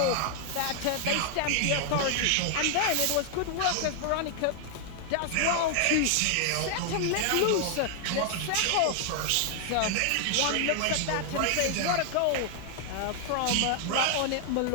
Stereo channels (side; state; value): both; different; correlation 0.00